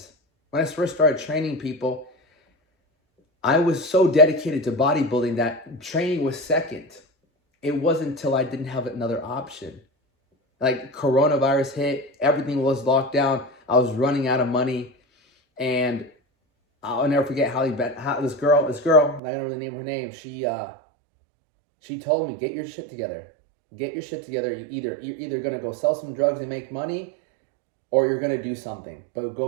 when I first started training people, I was so dedicated to bodybuilding that training was second. It wasn't until I didn't have another option. Like coronavirus hit, everything was locked down. I was running out of money, and I'll never forget how this girl, I'm not gonna really name her name. She told me, get your shit together. Get your shit together. You're either gonna go sell some drugs and make money, or you're gonna do something, but go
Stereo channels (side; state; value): left; drops out; at 19.2 s